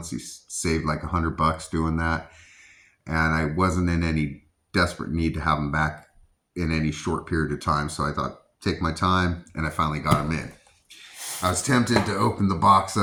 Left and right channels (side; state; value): both; identical; correlation 1.00